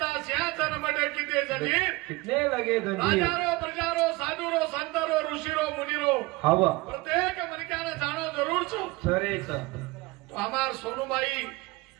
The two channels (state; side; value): quieter; left; 22.4 dB